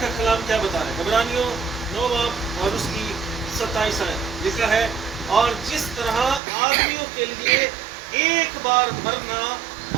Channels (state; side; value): drops out; left; at 6.4 s